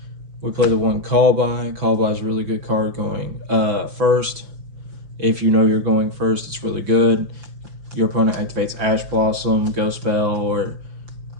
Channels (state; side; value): late; left; 5.7 ms